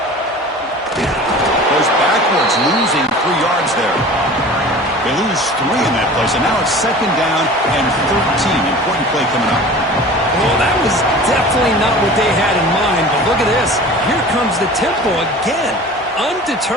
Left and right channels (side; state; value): both; normal; correlation 0.40